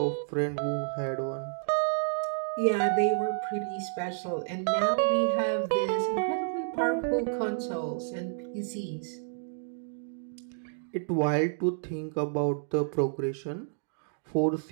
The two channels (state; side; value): silent; left; digital silence